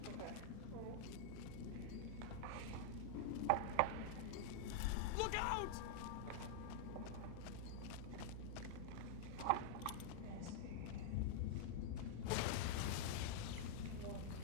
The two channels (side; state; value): both; different; correlation -0.01